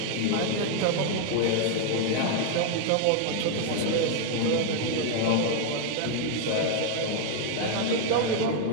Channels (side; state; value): both; different; correlation 0.00